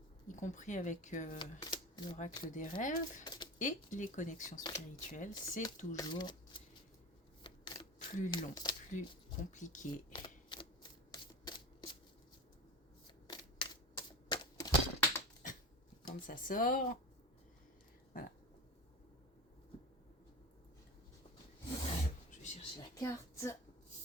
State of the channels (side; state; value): both; normal; correlation 0.29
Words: y compris avec l'oracle des rêves et les connexions spirituelles. C'est toujours plus long, plus compliqué. Quand ça sort, voilà. Je vais chercher la carte.